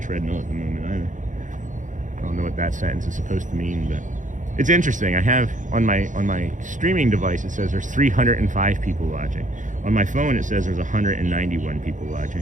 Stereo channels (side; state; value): left; late; 0.37 ms